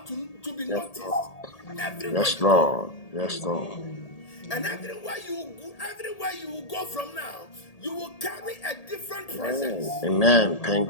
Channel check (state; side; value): late; right; 1.8 ms